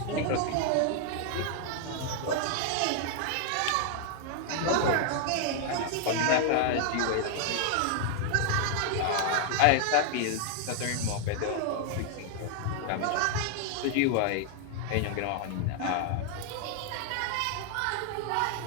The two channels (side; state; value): both; different; correlation 0.00